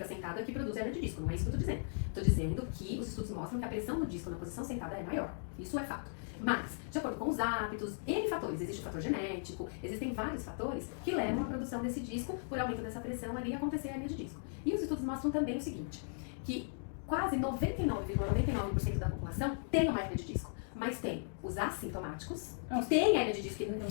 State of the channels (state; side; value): silent; right; digital silence